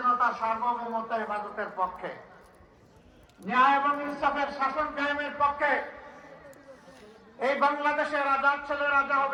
সার্বভৌমত্ব, হেফাজতের পক্ষে, ন্যায় এবং ইনসাফের শাসন কায়েমের পক্ষে। এই বাংলাদেশের রাজার ছেলে রাজা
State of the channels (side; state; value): both; identical; correlation 1.00